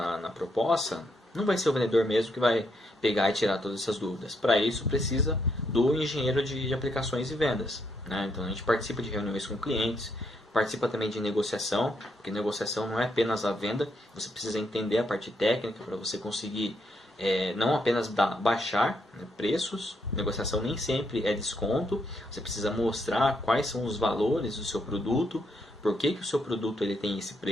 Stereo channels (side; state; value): both; normal; correlation 0.76